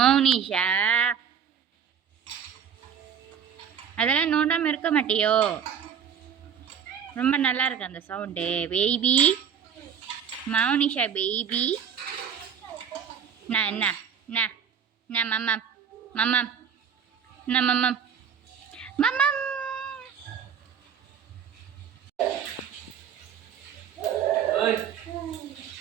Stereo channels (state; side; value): quieter; left; 7.7 dB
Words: அதெல்லாம் நோண்டாமல் இருக்க மாட்டியோ? ரொம்ப நல்லா இருக்கு அந்த சவுண்டு. Baby Mounisha baby. என்ன என்ன என்ன மம்மம் மம்மம் என்ன மம்மம் மம்மம்.